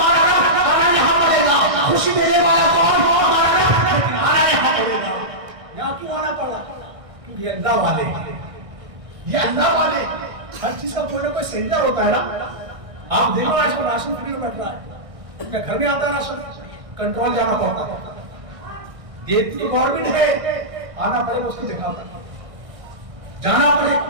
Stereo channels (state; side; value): late; left; 1.6 ms